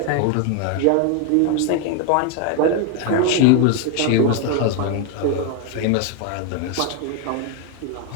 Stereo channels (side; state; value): both; different; correlation 0.01